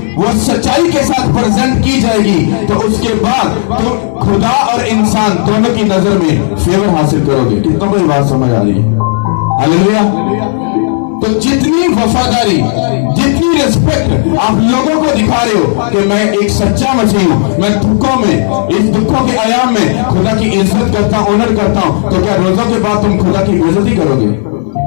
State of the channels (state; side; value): silent; right; digital silence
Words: वो सच्चाई के साथ प्रेजेंट की जाएगी तो उसके बाद तुम खुदा और इंसान दोनों की नजर में फेवर हासिल करोगे। कितनों को ये बात समझ आ रही है? हालेलुया! तो जितनी वफादारी, जितनी रिस्पेक्ट आप लोगों को दिखा रहे हो कि मैं एक सच्चा मसीह हूं, मैं दुखों में, इस दुखों के आयाम में खुदा की इज्जत करता हूं, ऑनर करता हूं, तो क्या रोजों के बाद तुम खुदा की बेइज्जती करोगे?